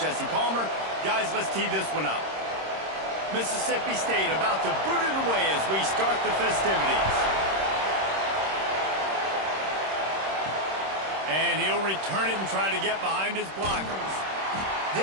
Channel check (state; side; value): late; left; 26 ms